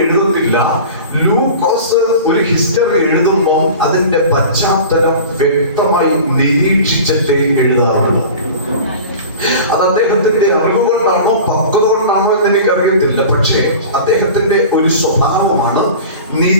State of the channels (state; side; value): inverted; both; correlation -0.38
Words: എഴുതത്തില്ല. ലൂക്കോസ് ഒരു ഹിസ്റ്ററി എഴുതുമ്പോൾ അതിന്റെ പശ്ചാത്തലം വ്യക്തമായി നിരീക്ഷിച്ചിട്ടേ എഴുതാറുള്ളൂ. അത് അദ്ദേഹത്തിന്റെ അറിവ് കൊണ്ടാണോ പക്വത കൊണ്ടാണോ എന്ന് എനിക്കറിയത്തില്ല. പക്ഷേ അദ്ദേഹത്തിന്റെ ഒരു സ്വഭാവമാണ്.